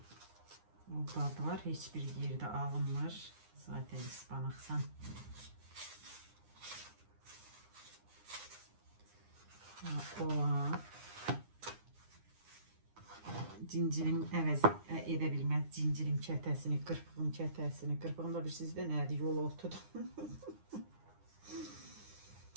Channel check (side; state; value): left; late; 9.8 ms